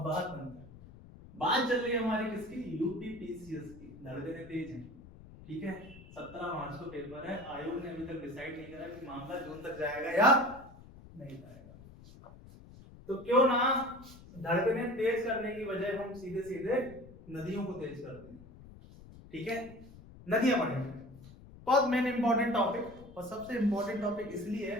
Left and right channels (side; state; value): left; noise; rumble, 19 dB below the sound